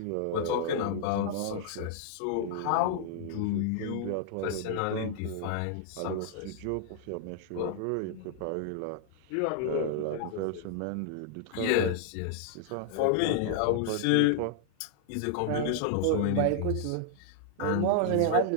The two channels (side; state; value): both; different; correlation -0.01